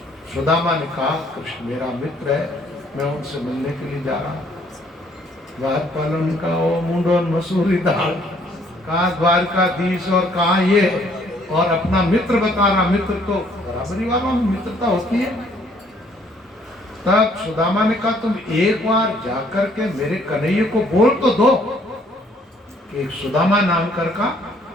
सुदामा ने कहा कृष्ण मेरा मित्र है, मैं उनसे मिलने के लिए जा रहा हूँ। द्वारपालों ने कहा ओ मुंडो मसूरी दाल, कहाँ द्वारकाधीश और कहाँ ये, और अपना मित्र बता रहा। मित्र तो बराबरी वालों में मित्रता होती है। तब सुदामा ने कहा तुम एक बार जाकर के मेरे कन्हैया को बोल तो दो कि सुदामा नाम कर का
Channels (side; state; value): both; normal; correlation 0.63